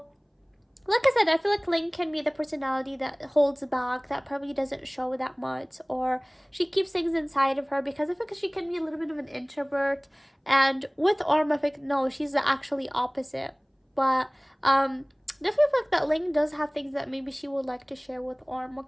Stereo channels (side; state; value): both; identical; correlation 1.00